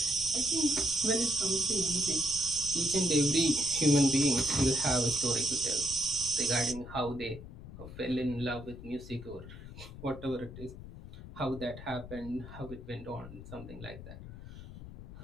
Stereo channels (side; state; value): left; noise; rumble, 13 dB below the sound